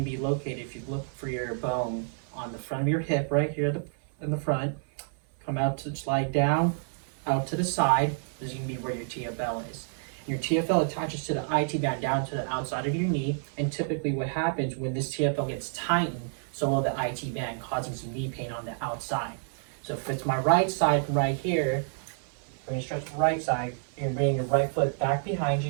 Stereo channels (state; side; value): silent; left; 59 dB below the other